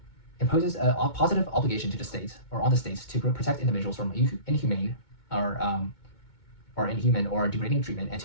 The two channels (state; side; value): late; right; 2.2 ms